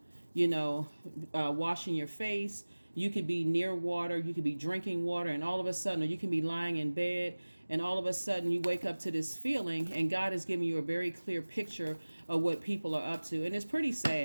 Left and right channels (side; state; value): both; inverted; correlation -1.00